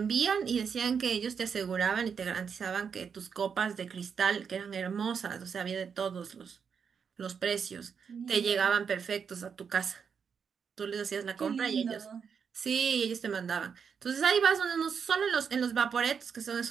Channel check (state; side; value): quieter; left; 6.6 dB